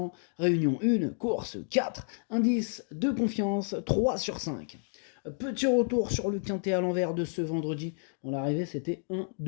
réunion 1, course 4, indice de confiance 3 sur 5. Petit retour sur le quintet à l'envers de ce vendredi. Bon, l'arrivée, c'était 1,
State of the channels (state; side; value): silent; right; 56 dB below the other